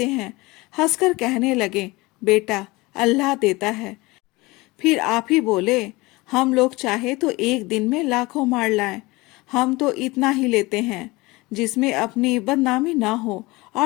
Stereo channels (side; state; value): right; quieter; 22.4 dB